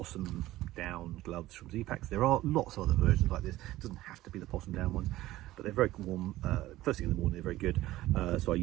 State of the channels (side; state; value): left; quieter; 16.2 dB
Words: down gloves from Ziplock. There are lots of other versions like this. It doesn't have to be the possum down ones, but they're very warm. First thing in the morning, they're very good. So I